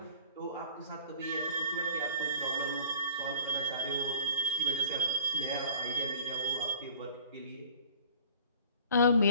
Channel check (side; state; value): both; inverted; correlation -0.49